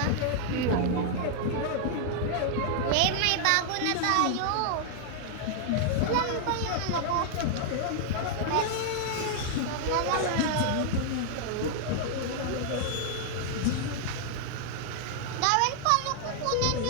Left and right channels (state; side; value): different; both; correlation -0.01